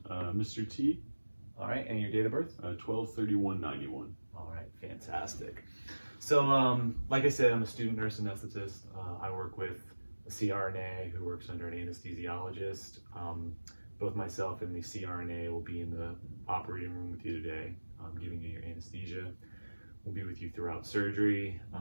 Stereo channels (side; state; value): both; inverted; correlation -1.00